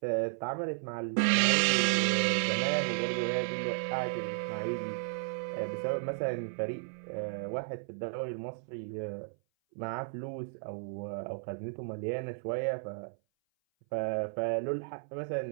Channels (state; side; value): silent; left; 55 dB below the other